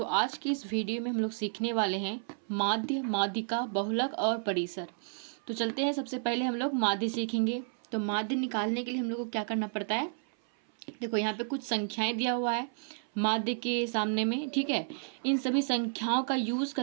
आज की इस वीडियो में हम लोग सीखने वाले हैं माध्य, माध्यिका, बहुलक और परिसर। तो चलते हैं, सबसे पहले हम लोग माध्य सीखेंगे। तो माध्य निकालने के लिए हम लोग को क्या करना पड़ता है। देखो यहाँ पे कुछ संख्याएं दिया हुआ है माध्य के सामने में, ठीक है। इन सभी संख्याओं का यूज़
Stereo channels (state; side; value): silent; left; 57 dB below the other